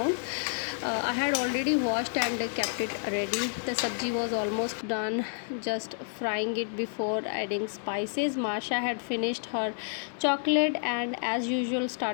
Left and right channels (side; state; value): right; silent; digital silence